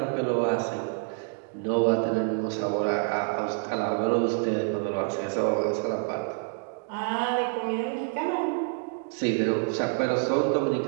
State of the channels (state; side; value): silent; left; 55 dB below the other